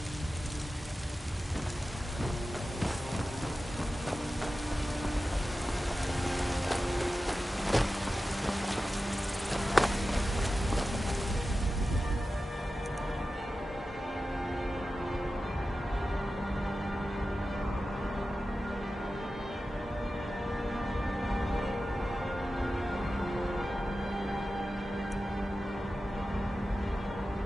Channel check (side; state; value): both; normal; correlation 0.93